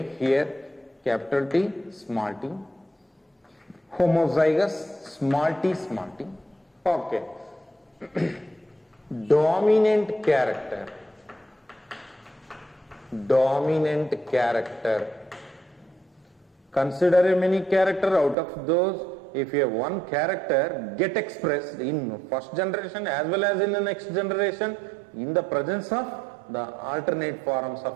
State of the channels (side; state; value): left; drops out; at 18.4 s